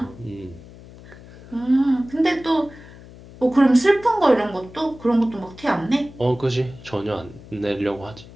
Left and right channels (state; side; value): noise; left; hum, 19 dB below the sound